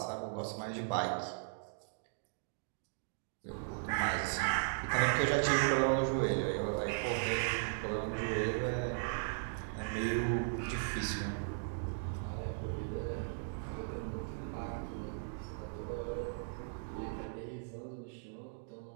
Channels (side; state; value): left; silent; digital silence